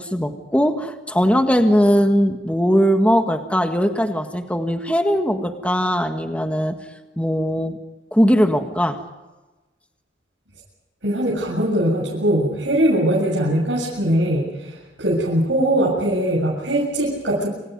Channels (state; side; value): normal; both; correlation 0.76